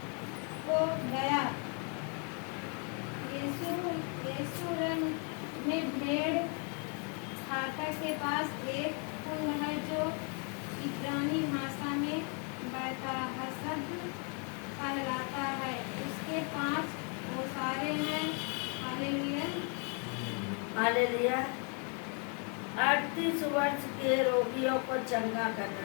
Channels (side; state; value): right; quieter; 38.3 dB